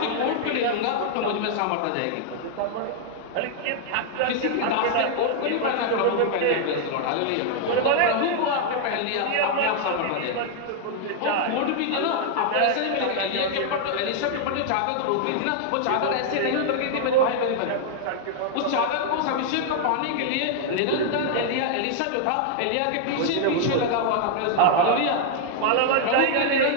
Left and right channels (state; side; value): different; both; correlation -0.01